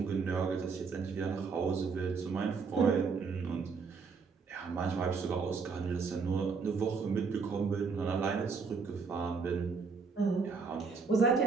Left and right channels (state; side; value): quieter; left; 5.0 dB